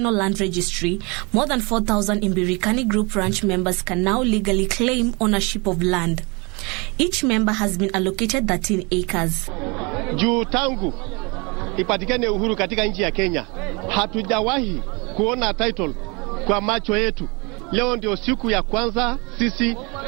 Land Registry, more than 4,000 Imbirikani Group ranch members can now legally claim ownership of land. Each member has been allocated 13 acres. Juu tangu ipatikane uhuru katika nchi ya Kenya, hatujawahi kuona title kwa macho yetu. Leo ndio siku ya kwanza sisi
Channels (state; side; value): quieter; left; 29.0 dB